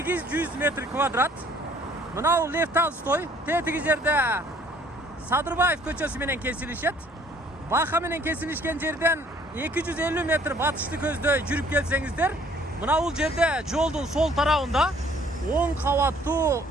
метр квадрат. Мынау Лев Толстой, тетиги жерде Садырбаев көчөсү менен кесилишет. Бака менен кесилишкен жерден 250 метр батышты көздөй жүрүп келсеңиздер, мына бул жерде жолдун сол тарабында 10 кабаттуу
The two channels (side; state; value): both; normal; correlation 0.59